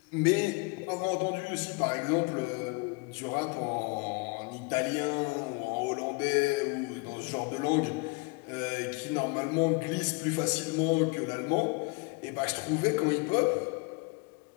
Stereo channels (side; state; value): right; quieter; 29.1 dB